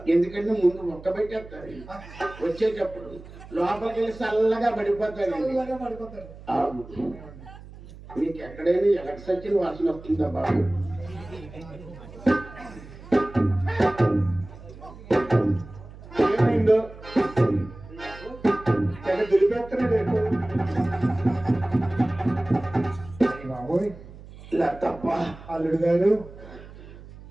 ముందు మొక్క పెట్టేస్తారు, వచ్చేటప్పుడు లోపలికి వెళ్ళి చల్లగా పడిపోతాడు. మీకు ఎక్కడైనా ఎలక్ట్రిసిటీ వాసన వస్తుందా బాబు? ఏమైందో దులిపేస్తున్నాడు బాబోయ్. ఇలా తప్ప అల్లుడు గారు,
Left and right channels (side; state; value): right; noise; hum, 17 dB below the sound